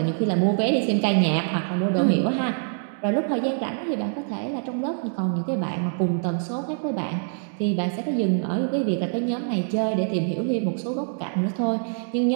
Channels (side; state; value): left; silent; digital silence